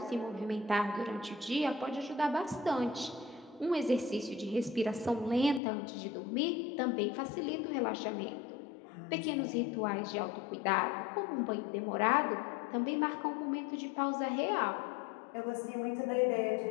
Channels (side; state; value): right; drops out; at 5.6 s